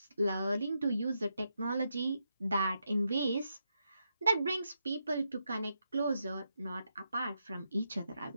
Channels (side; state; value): both; inverted; correlation -0.83